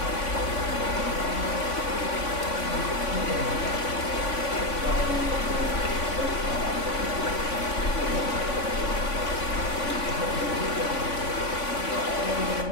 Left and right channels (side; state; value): right; late; 3.5 ms